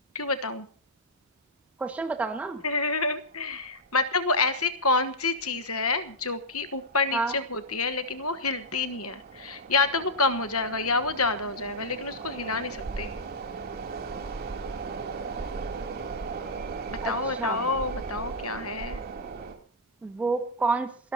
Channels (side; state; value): both; normal; correlation -0.08